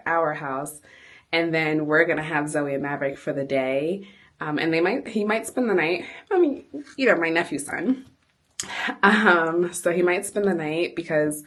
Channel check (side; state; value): both; identical; correlation 1.00